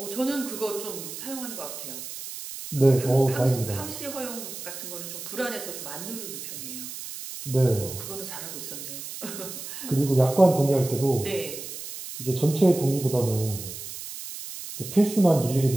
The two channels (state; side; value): noise; right; hiss, 10 dB below the sound